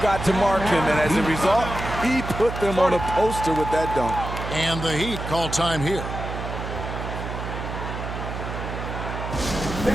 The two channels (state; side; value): noise; right; hum, 6 dB below the sound